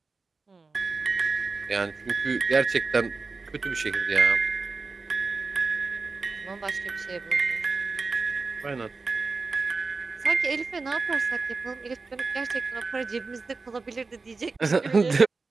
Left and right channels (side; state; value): left; quieter; 4.1 dB